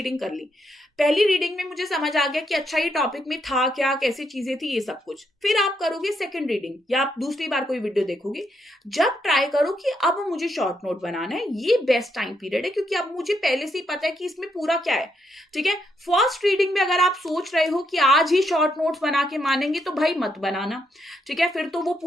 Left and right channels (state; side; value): normal; both; correlation 0.78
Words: कर ली। पहली रीडिंग में मुझे समझ आ गया कि अच्छा ये टॉपिक में था क्या, कैसी चीजें थी, ये सब कुछ। फिर आप करोगे सेकंड रीडिंग, या आप दूसरी बार कोई वीडियो देखोगे, जब ट्राई करो कि अब मुझे शॉर्ट नोट बनाना है। ये बेस्ट टाइम पीरियड है, क्योंकि अब मुझे पहले से ही पता है कि इसमें पूरा क्या है। ठीक है। फर्स्ट रीडिंग में अगर आप सोच रहे हो कि आज ही शॉर्ट नोट्स बना के मानेंगे, तो भाई मत बनाना। ठीक है। फिर तो वो